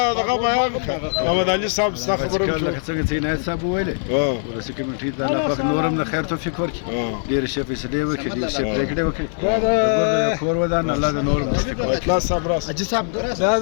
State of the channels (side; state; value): right; silent; 57 dB below the other